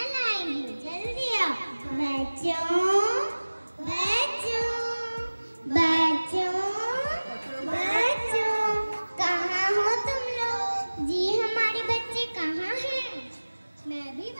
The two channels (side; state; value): both; inverted; correlation -1.00